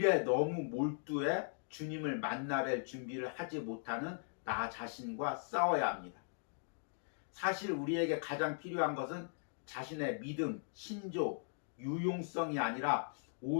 너무 몰두해 주님을 만나뵐 준비를 하지 못하는 나 자신과 싸워야 합니다. 사실 우리에게 가장 필요한 것은 자신의 믿음, 신조, 유용성이 아니라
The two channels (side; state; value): right; silent; digital silence